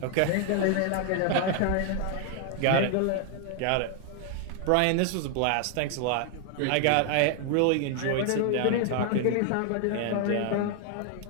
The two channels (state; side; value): different; both; correlation 0.00